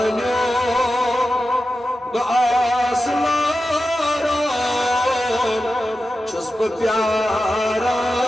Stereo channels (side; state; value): both; normal; correlation 0.92